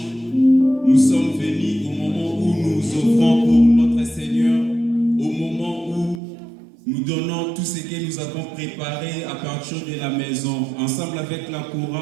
Nous sommes venus au moment où nous offrons pour notre Seigneur, au moment où nous donnons tout ce que nous avons préparé à partir de la maison. Ensemble avec la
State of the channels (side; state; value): left; drops out; at 6.2 s